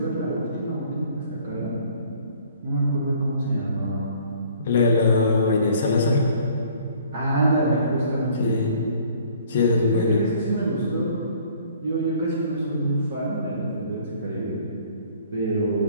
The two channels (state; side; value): inverted; both; correlation -0.56